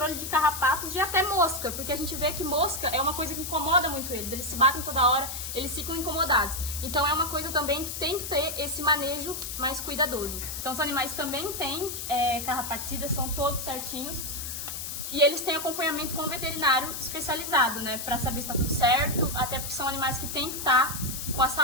de carrapatos e até mosca, porque a gente vê que mosca é uma coisa que incomoda muito eles se batem toda hora, eles ficam incomodados. Então é uma coisa também que tem que ter esse manejo mais cuidadoso. Então os animais também têm carrapaticidas, são todos certinhos. E eles têm acompanhamento com o veterinário especializado, né, para saber se está tudo certo, até porque são animais que têm que estar com a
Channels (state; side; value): noise; left; hiss, 6 dB below the sound